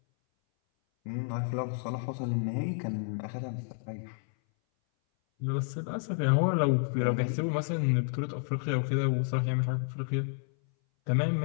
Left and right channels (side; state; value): right; silent; 58 dB below the other